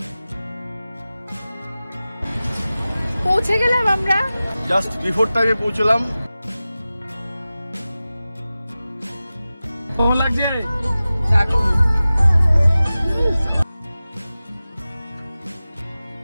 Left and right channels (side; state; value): both; inverted; correlation -0.96